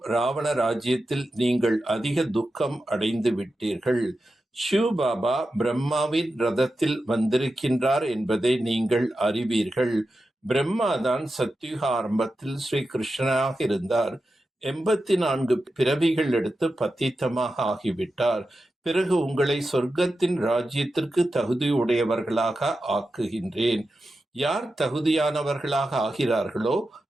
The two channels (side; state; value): both; normal; correlation 0.91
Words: ராவண ராஜ்யத்தில் நீங்கள் அதிக துக்கம் அடைந்து விட்டீர்கள். சிவ பாபா பிரம்மாவின் ரதத்தில் வந்திருக்கின்றார் என்பதை நீங்கள் அறிவீர்கள். பிரம்மாதான் சத்யுக ஆரம்பத்தில் ஸ்ரீ கிருஷ்ணனாக இருந்தார். 84 பிறவிகள் எடுத்து பத்தீத்தமாக ஆகிவிட்டார். பிறகு உங்களை சொர்க்கத்தின் ராஜ்யத்திற்கு தகுதியுடையவர்களாக ஆக்குகின்றேன். யார் தகுதியானவர்களாக ஆகிறார்களோ